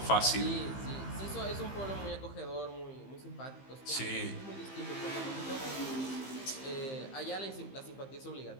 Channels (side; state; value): right; late; 15 ms